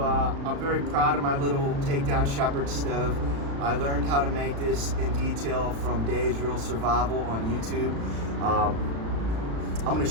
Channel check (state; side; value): late; left; 36 ms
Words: I'm very proud of my little takedown Shepard stove. I learned how to make this in detail from Dave's Real Survival on YouTube. I'm going to